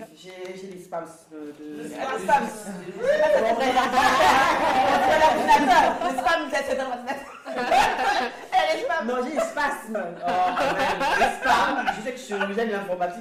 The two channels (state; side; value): identical; both; correlation 1.00